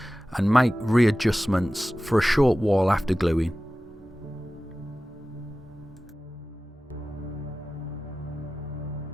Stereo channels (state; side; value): normal; both; correlation 0.96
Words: and make readjustments for a short while after gluing.